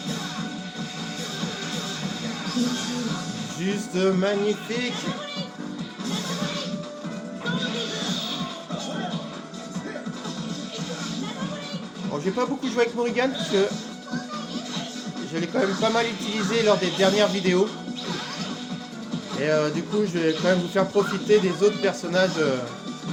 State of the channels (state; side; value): identical; both; correlation 1.00